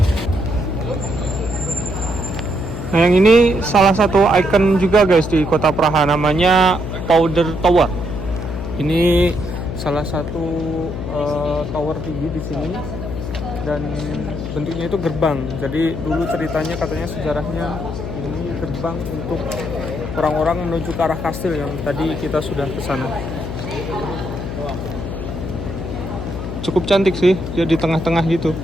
Nah yang ini salah satu ikon juga guys di kota Praha, namanya Powder Tower. Ini salah satu tower tinggi di sini dan bentuknya itu gerbang. Jadi dulu ceritanya katanya sejarahnya ini gerbang untuk orang-orang menuju ke arah kastil yang tadi kita sudah ke sana. Cukup cantik sih, dia di tengah-tengah gitu.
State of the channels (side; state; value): left; noise; hum, 6 dB below the sound